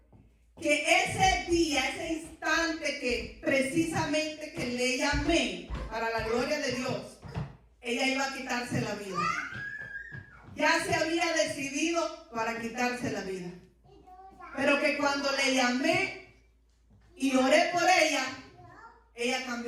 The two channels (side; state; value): both; identical; correlation 1.00